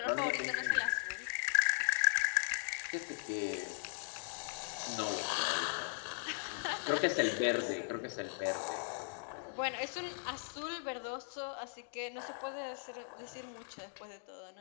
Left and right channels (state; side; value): silent; right; digital silence